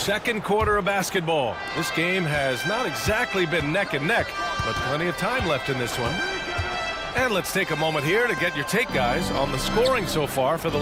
quarter of basketball. This game has not exactly been neck and neck, but plenty of time left in this one. And let's take a moment here to get your take, guys, on the scoring so far for the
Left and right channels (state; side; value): identical; both; correlation 1.00